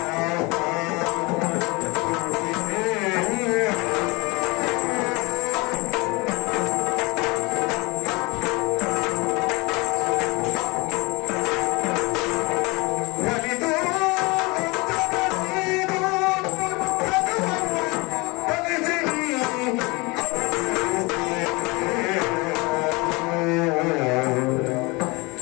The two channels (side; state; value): right; quieter; 25.8 dB